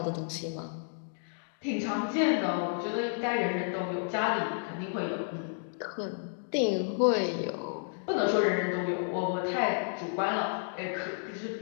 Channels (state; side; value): silent; right; digital silence